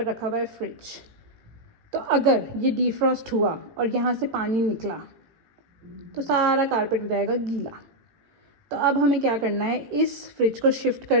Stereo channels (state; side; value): late; left; 18 ms